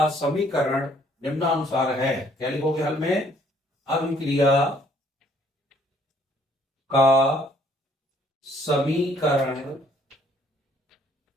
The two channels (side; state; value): both; normal; correlation 0.63